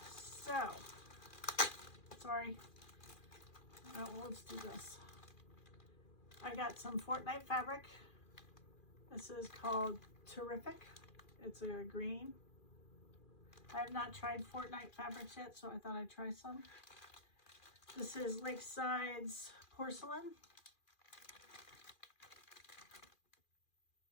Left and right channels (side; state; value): right; late; 2.4 ms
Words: So, sorry. Oh, let's do this. I got some Fortnite fabric. This is called Terrific. It's a green. I have not tried Fortnite fabrics yet, so I thought I'd try some. This is Lakeside's Porcelain.